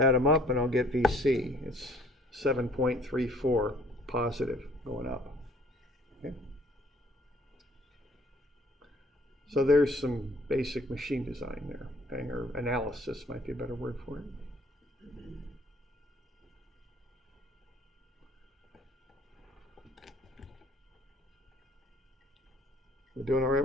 them up and I'll get VC. It's 7.34 positive going up. Okay. So there's some basic machine design there, okay? Or analysis might be a better word for it. We're doing all right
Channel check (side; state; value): both; normal; correlation 0.57